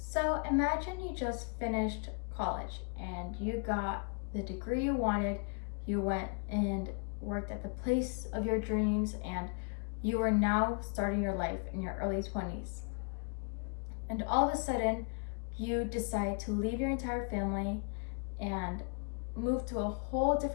So imagine you just finished college and you got the degree you wanted. You went and worked at the place of your dreams, and you are now starting your life in your early 20s. And all of a sudden, you decide to leave your entire family and move to a whole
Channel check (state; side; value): quieter; right; 37.7 dB